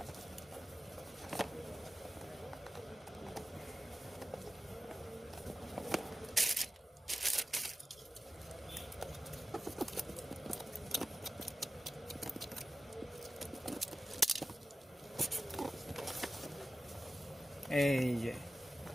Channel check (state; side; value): normal; both; correlation 0.93